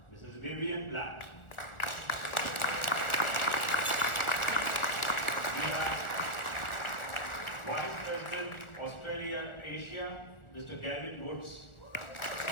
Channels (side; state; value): right; late; 1.4 ms